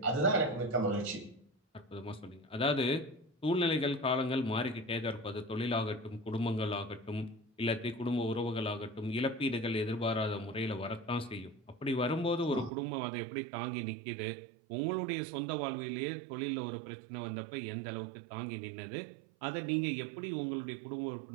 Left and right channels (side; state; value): left; drops out; at 12.7 s